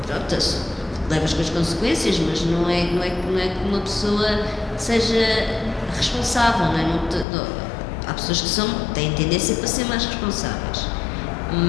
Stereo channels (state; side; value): drops out; right; at 7.2 s